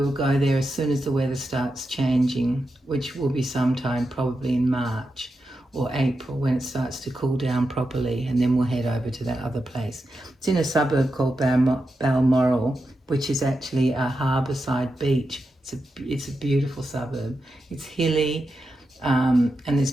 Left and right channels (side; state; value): both; normal; correlation 0.88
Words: go there as soon as the weather starts changing, which will be sometime probably in March or April, when it starts to cool down properly, and then we'll head over to that other place. It's in a suburb called Balmoral, which is actually a harbourside beach. It's a beautiful suburb. It's hilly, and it's